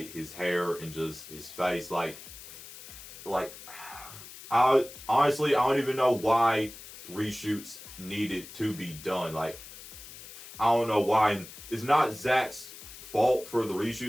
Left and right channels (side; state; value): left; noise; hiss, 15 dB below the sound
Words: his hair and just his face. Like I honestly, I don't even know why reshoots needed to be done. Like, I don't know why. And it's not Zack's fault for the